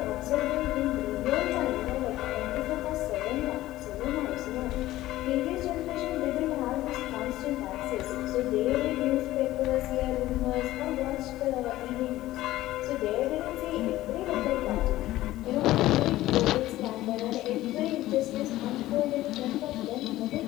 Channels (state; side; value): quieter; right; 15.9 dB